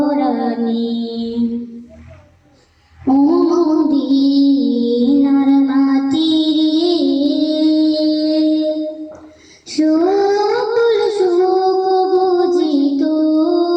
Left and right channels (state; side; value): identical; both; correlation 1.00